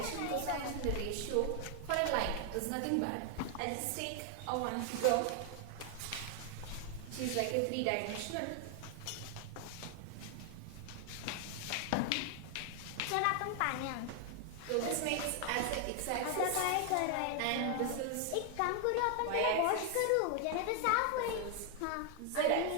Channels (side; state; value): both; different; correlation 0.00